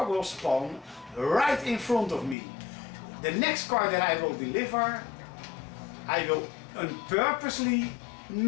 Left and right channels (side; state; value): right; drops out; at 2.4 s